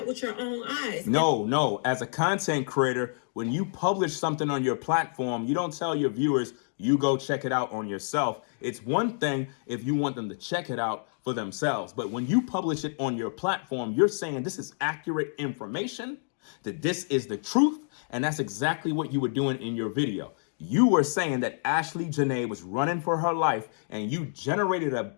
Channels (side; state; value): right; silent; digital silence